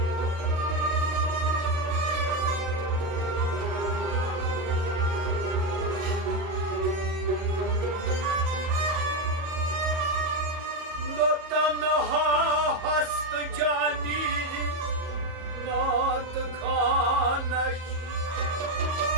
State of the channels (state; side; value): late; left; 37 ms